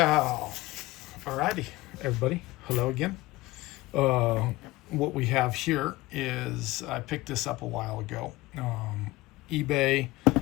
alrighty, everybody. Hello again. Uh, what we have here is I picked this up a while ago. eBay.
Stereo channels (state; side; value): quieter; right; 19.5 dB